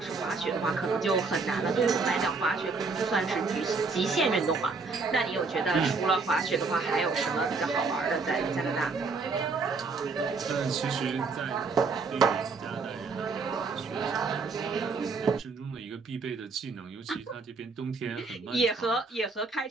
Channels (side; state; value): left; quieter; 4.3 dB